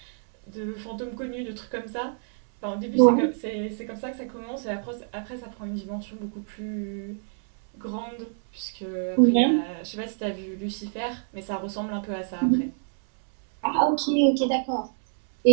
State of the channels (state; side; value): silent; left; 60 dB below the other